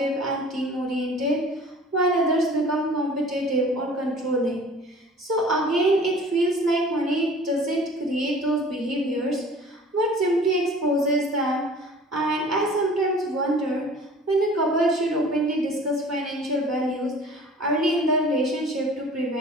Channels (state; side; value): normal; both; correlation 0.47